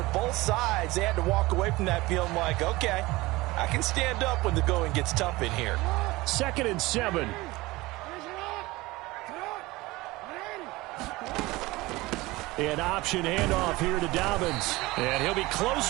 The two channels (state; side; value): quieter; left; 20.6 dB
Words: both sides, they had to walk away from that feeling like, okay, I can stand up when the going gets tough in here. 2nd and 7. An option handoff here to Dobbins. And he'll be close